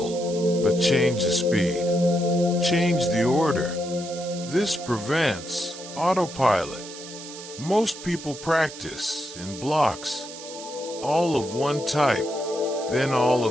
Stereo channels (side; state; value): right; noise; hiss, 13 dB below the sound